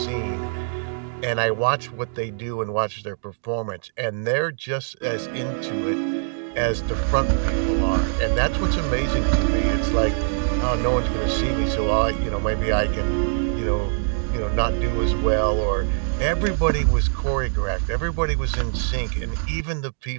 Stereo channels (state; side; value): silent; left; digital silence